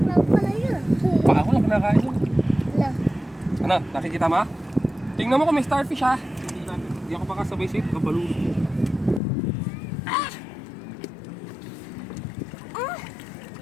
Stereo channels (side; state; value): right; drops out; at 9.2 s